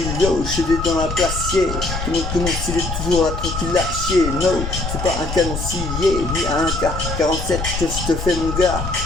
yo, je suis dans la place, yeah. Tout le monde s'il est toujours là tranquille là, chier, no. C'est pas un canon scié, ni un K47 que je te fais mon gars.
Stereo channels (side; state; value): left; noise; rumble, 5 dB below the sound